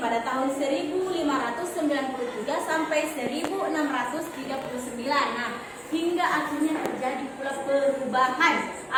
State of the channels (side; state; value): both; identical; correlation 1.00